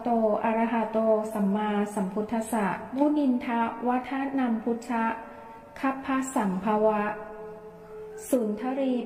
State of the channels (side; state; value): both; identical; correlation 1.00